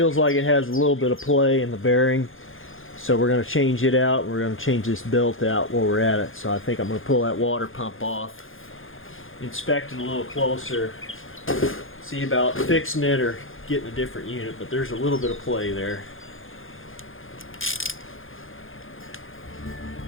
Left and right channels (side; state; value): right; late; 0.59 ms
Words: like it has a little bit of play in the bearing, so we're going to change it out. We're going to change this belt out while we're at it. So I think I'm going to pull that water pump off, inspect it a little closer, see about fixing it or getting a different unit, but there's a little bit of play there.